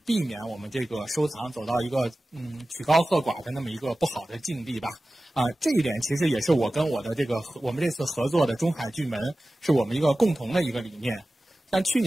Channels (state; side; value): normal; both; correlation 0.96